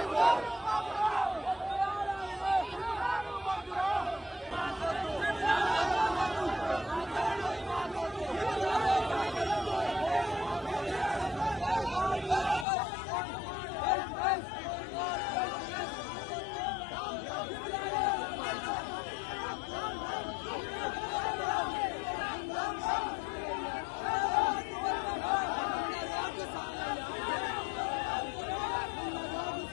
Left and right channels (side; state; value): right; drops out; at 12.7 s